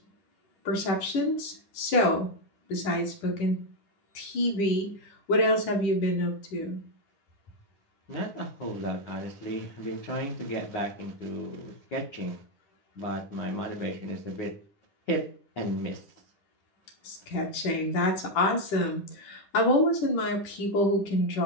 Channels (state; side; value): late; right; 10 ms